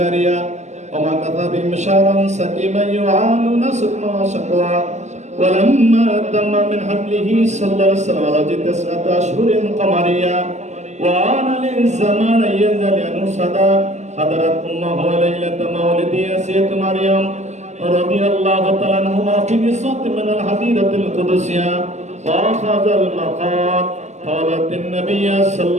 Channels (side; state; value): left; late; 0.33 ms